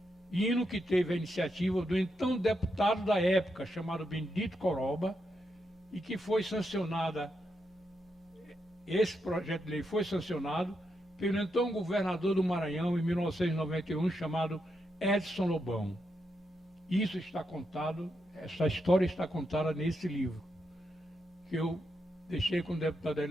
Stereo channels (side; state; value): both; normal; correlation 0.83